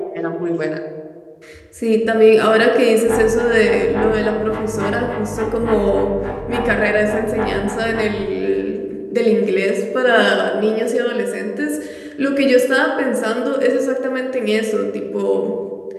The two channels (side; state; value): both; identical; correlation 1.00